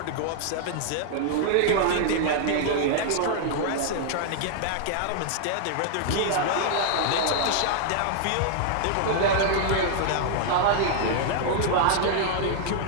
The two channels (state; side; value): different; both; correlation -0.01